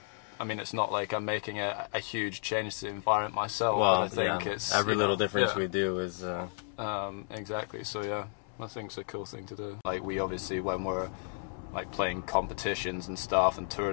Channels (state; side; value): silent; right; 56 dB below the other